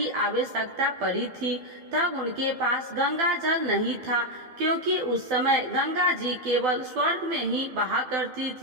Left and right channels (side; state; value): left; late; 12 ms